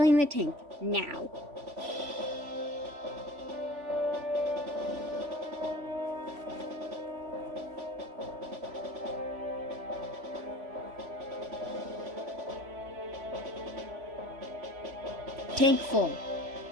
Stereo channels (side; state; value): left; late; 3.1 ms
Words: the tank now. Tank full.